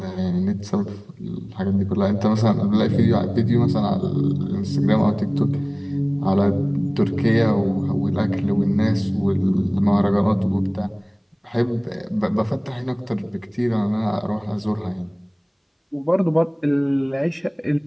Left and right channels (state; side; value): identical; both; correlation 1.00